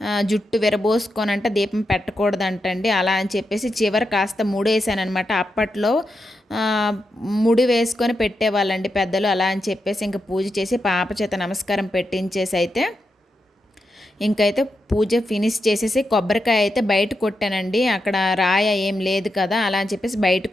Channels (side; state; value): both; normal; correlation 0.86